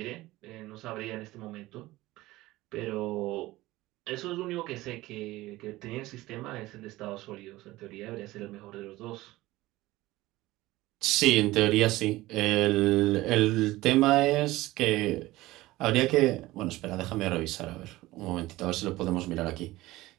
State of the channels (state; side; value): quieter; left; 18.1 dB